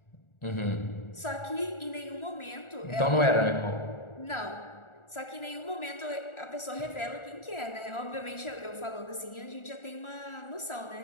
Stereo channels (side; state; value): right; late; 1.4 ms